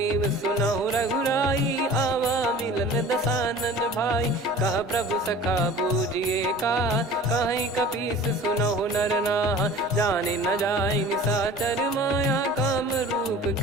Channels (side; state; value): both; normal; correlation 0.42